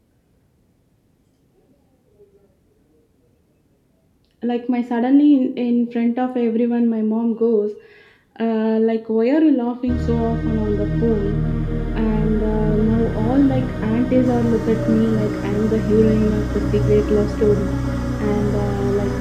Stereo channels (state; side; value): identical; both; correlation 1.00